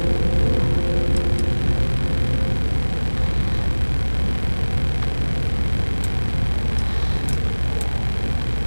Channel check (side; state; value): both; inverted; correlation -1.00